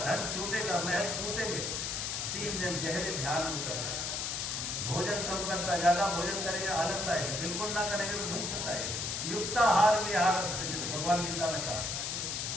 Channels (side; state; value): left; noise; hiss, 2 dB below the sound